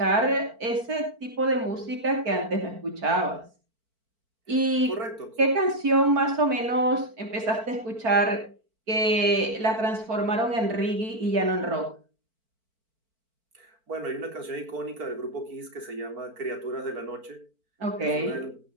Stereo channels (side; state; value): left; late; 4.5 ms